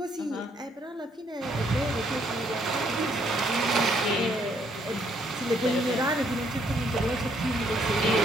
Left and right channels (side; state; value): both; normal; correlation 0.69